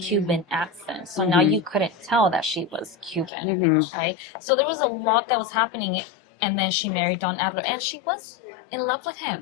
accent. So now you couldn't tell that she was Cuban, right? So there was a lot that was happening. And then she married Don Adler and she was in love with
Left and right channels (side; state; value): right; drops out; at 3.3 s